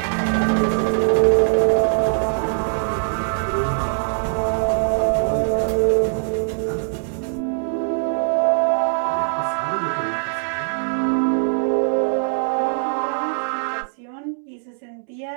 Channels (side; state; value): left; silent; 65 dB below the other